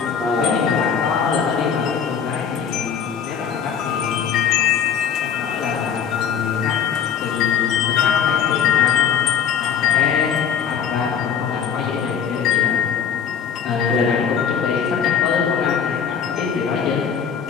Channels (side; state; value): right; quieter; 7.5 dB